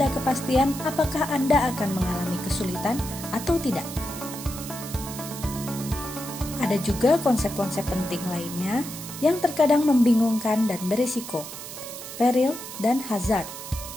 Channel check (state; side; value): noise; right; hiss, 11 dB below the sound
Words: kepastian apakah Anda akan mengalami kesulitan atau tidak. Ada juga konsep-konsep penting lainnya yang terkadang membingungkan dan berisiko. Peril dan hazard.